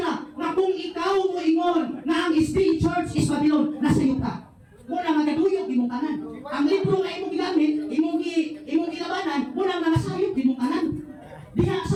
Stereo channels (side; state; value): both; identical; correlation 1.00